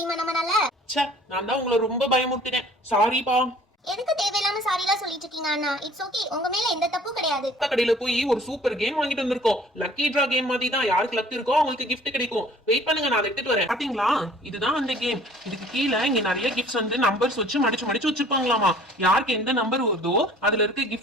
நம்மளால? ச்சே, நான் தான் உங்களை ரொம்ப பயமுறுத்தினேன். சாரிப்பா. எதுக்கு தேவையில்லாம சாரிலாம் சொல்லிட்டு இருக்கீங்க அண்ணா? இட்ஸ் ஓகே, உங்க மேல எந்த தப்பும் கிடையாது. கடையில போய் ஒரு சூப்பர் கேம் வாங்கிட்டு வந்திருக்கோம். லக்கி டிரா கேம் மாதிரி தான். யாருக்கு லக் இருக்கோ அவங்களுக்கு கிஃப்ட் கிடைக்கும். வெயிட் பண்ணுங்க, நான் எடுத்துட்டு வரேன். பாத்தீங்களா, இதுதான் அந்த கேம். இதுக்கு கீழே இங்க நிறைய கிஃப்ட்ஸ் வந்து நம்பர்ஸ் வச்சு மடிச்சு வச்சிருப்பாங்களாமா. யாருக்கு எந்த நம்பர் வருதோ அதுல இருக்க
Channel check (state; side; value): normal; both; correlation 0.52